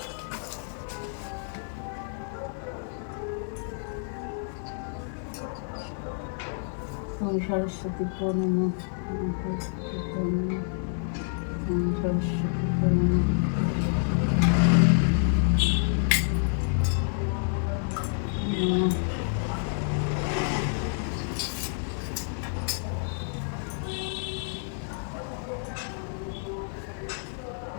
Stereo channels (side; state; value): right; silent; digital silence